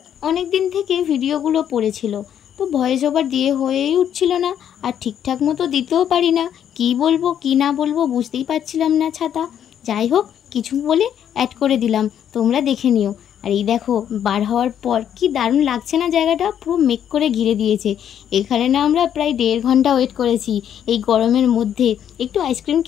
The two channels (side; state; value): right; quieter; 9.5 dB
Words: অনেক দিন থেকে ভিডিওগুলো পড়েছিল, তো ভয়েস ওভার দিয়ে হয়েই উঠছিল না। আর ঠিকঠাক মতো দিতেও পারি না, কি বলবো কি না বলবো বুঝতেই পারছিলাম না ছাতা। যাই হোক, কিছু বলে অ্যাড করে দিলাম, তোমরা দেখে নিও। আর এই দেখো, বার হওয়ার পর কি দারুণ লাগছে না, জায়গাটা পুরো মেক করে ঘিরে দিয়েছে। এখানে না আমরা প্রায় 1.5 ঘন্টা ওয়েট করেছি এই গরমের মধ্যে। একটু আইসক্রিম